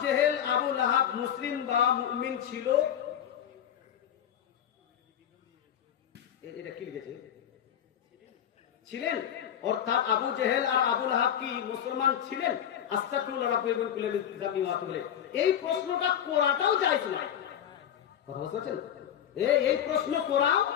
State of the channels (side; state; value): right; quieter; 9.7 dB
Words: জেহেল আবু লাহাব মুসলিম বা মুমিন ছিল? এটা কি লিখেছে? ছিলেন, অর্থাৎ আবু জেহেল আর আবু লাহাব কি মুসলমান ছিলেন? আস্তাগফিরুল্লাহ রাব্বিল কুল্লি যাবি ওয়া তুবু ইলাইহি। এই প্রশ্নটা করাটাও জায়েজ না। কথা বুঝছেন? এই প্রশ্ন করাও